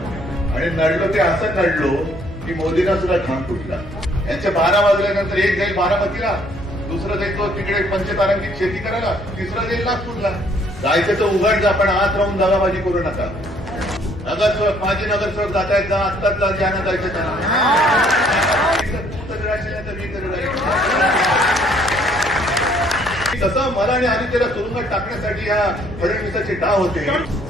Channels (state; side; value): normal; both; correlation 0.63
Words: आणि नडलो ते असं नडलो की मोदींना सुद्धा घाम फुटला. यांचे 12 वाजल्यानंतर एक जाईल बारामतीला, दुसरं जाईल तो तिकडे पंचतारांकित शेती करायला, तिसरं जाईल नागपूरला. जायचं तर उघड जा, पण आत राहून दगाबाजी करू नका. नगरसेवक माझे नगरसेवक जात आहेत, जा आत्ताच जा, ज्यांना जायचं त्यांना. तू तर राहशील तर मी तर राहील. तसं मला आणि आदित्यला तुरुंगात टाकण्यासाठी या फडणवीसाचे डाव होते.